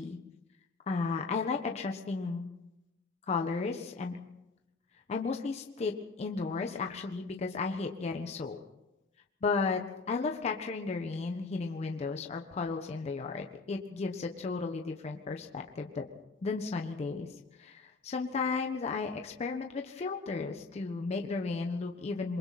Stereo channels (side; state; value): right; quieter; 4.0 dB